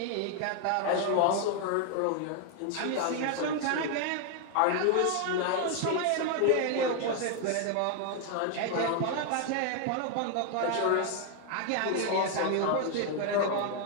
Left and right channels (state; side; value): different; both; correlation 0.00